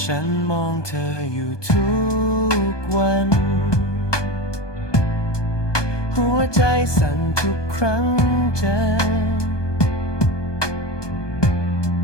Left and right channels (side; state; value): right; late; 1.2 ms